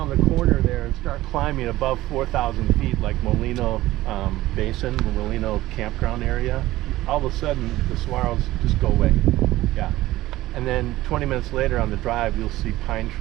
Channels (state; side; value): quieter; left; 16.6 dB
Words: the corner there and start climbing above 4,000 feet, like Molino Basin, the Molino campground area. All of a sudden, the saguaros just go away. Yeah. And then 20 minutes later on the drive, you'll see pine